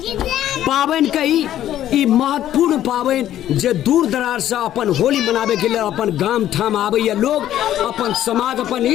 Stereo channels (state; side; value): quieter; right; 12.0 dB